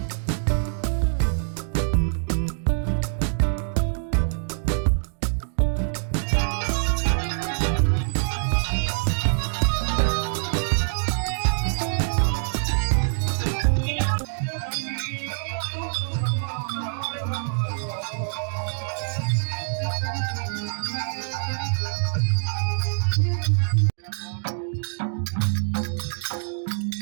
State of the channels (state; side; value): silent; left; digital silence